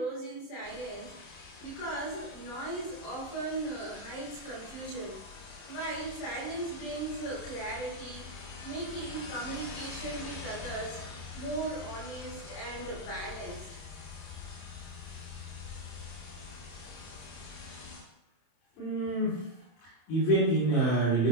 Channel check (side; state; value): right; late; 30 ms